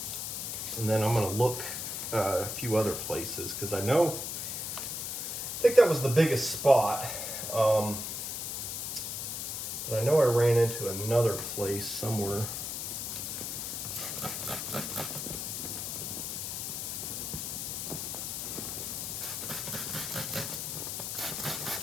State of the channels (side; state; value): left; noise; hiss, 4 dB below the sound